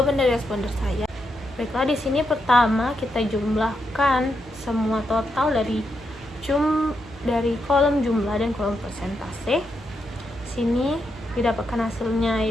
dari responder saya. Baiklah, di sini pertama kita jumlahkan semua total dari kolom jumlah dan kolom persentase. Sini didapatkan hasilnya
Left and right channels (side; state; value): both; normal; correlation 0.83